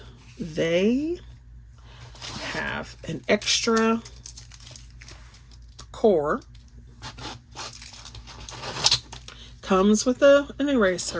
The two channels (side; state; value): both; identical; correlation 1.00